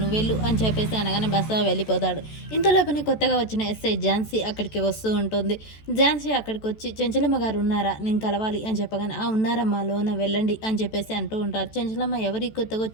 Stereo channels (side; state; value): right; late; 14 ms